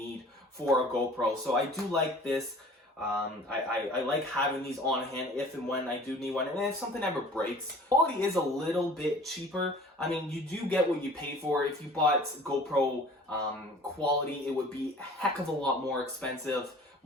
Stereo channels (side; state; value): both; normal; correlation 0.47